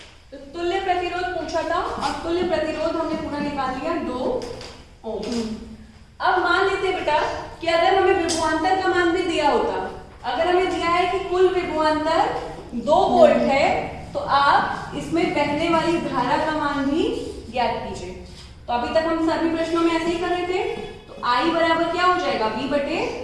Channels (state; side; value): identical; both; correlation 1.00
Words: तो तुल्य प्रतिरोध पूछा था और तुल्य प्रतिरोध हमने पूरा निकाल लिया 2 ओम। अब मान लेते हैं बेटा कि अगर हमें विभवांतर का मान भी दिया होता, अगर हमें दिया है कि कुल विभवांतर 2 वोल्ट है तो आप इसमें बहने वाली धारा का मान भी ज्ञात कीजिए। तो अभी तक हम सभी प्रश्नों में ऐसे ही कर रहे थे। तो I बराबर क्या हो जाएगा